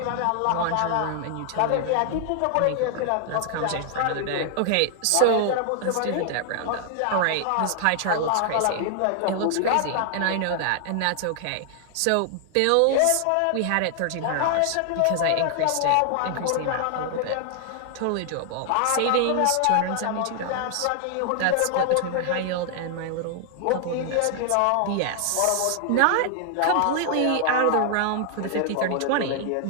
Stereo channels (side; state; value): both; different; correlation 0.00